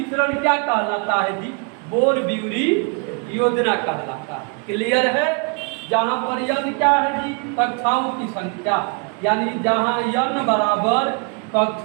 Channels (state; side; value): quieter; left; 35.7 dB